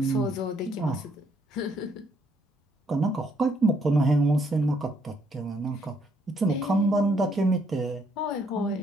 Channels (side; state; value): both; normal; correlation 0.70